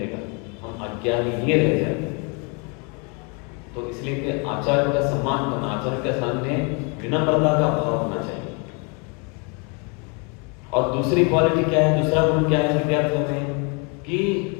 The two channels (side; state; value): right; quieter; 34.0 dB